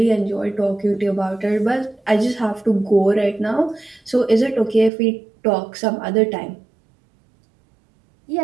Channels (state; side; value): drops out; left; at 4.9 s